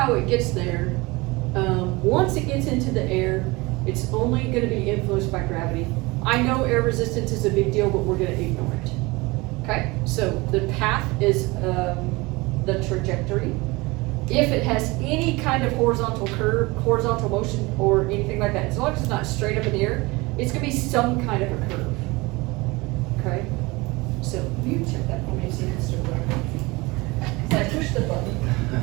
it gets there, once it gets into the air, it's only going to be influenced by gravity. I know air resistance is a big deal, but we're going to ignore it. Okay, so the path is the trajectory. If it has any kind of horizontal curve, horizontal motion, or anything like that, as long as it's not straight up in the air, it's going to be some kind of a curve. Okay, so you check that for me, see if it's still working. I pushed the button.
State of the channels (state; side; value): quieter; left; 23.5 dB